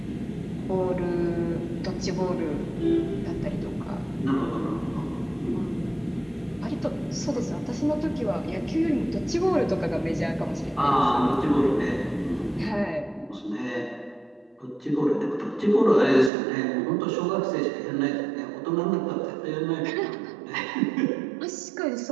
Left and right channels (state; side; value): drops out; left; at 16.3 s